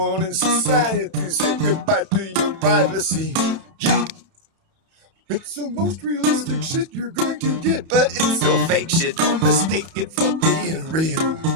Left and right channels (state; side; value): late; left; 30 ms